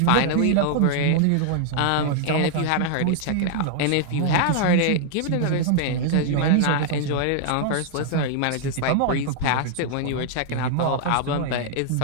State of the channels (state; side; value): different; both; correlation -0.01